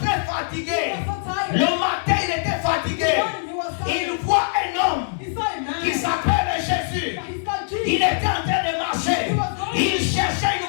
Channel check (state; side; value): silent; right; digital silence